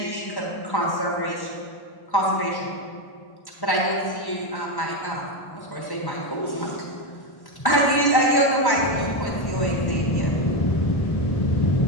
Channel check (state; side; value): late; right; 1.1 ms